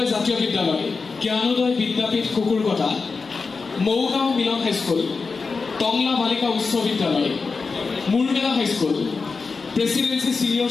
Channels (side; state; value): right; quieter; 4.5 dB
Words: জাতীয় বিদ্যালয় জ্ঞানোদয় বিদ্যাপীঠ কুকুৰকটা মৌগাঁও মিলন হাইস্কুল টংলা বালিকা উচ্চ বিদ্যালয় Murmela high school presidency senior